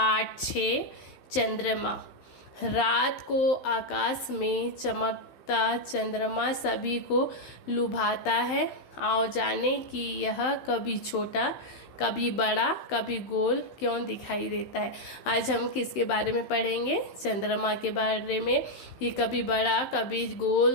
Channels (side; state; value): right; late; 16 ms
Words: 6 चंद्रमा। रात को आकाश में चमकता चंद्रमा सभी को लुभाता है। आओ जाने कि यह कभी छोटा, कभी बड़ा, कभी गोल क्यों दिखाई देता है। आज हम किसके बारे में पढ़ेंगे? चंद्रमा के बारे में। ये कभी बड़ा, कभी गोल,